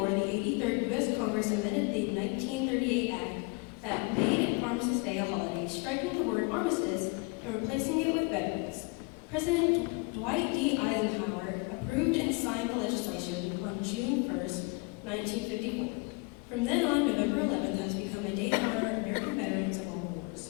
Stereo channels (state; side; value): quieter; right; 29.5 dB